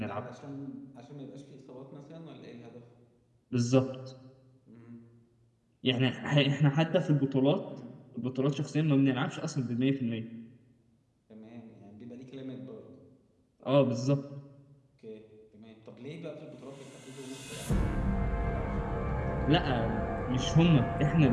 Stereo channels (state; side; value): identical; both; correlation 1.00